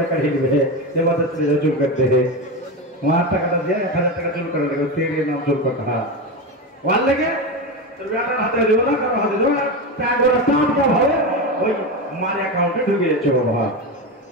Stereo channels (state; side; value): normal; both; correlation 0.17